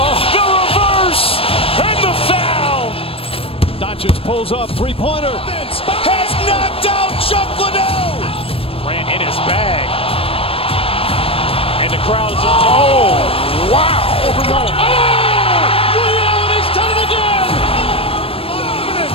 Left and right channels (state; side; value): late; right; 0.27 ms